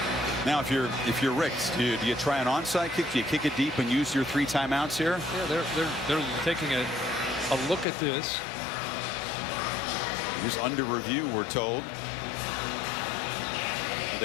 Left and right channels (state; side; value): drops out; right; at 7.9 s